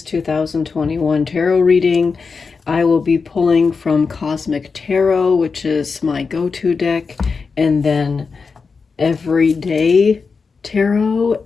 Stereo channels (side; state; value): right; quieter; 4.9 dB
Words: 2021 tarot reading. I will be pulling from Cosmic Tarot, which is my go-to deck, and then Everyday Tarot,